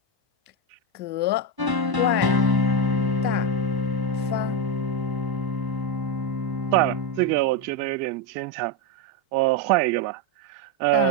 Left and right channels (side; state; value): left; late; 1.0 ms